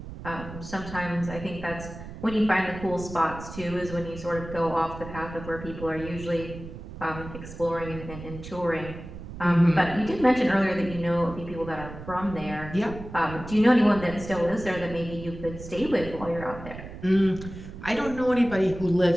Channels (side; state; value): right; noise; rumble, 12 dB below the sound